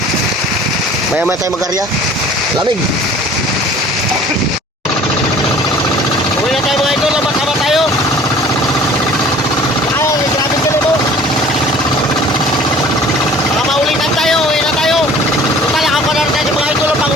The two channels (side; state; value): both; normal; correlation 0.48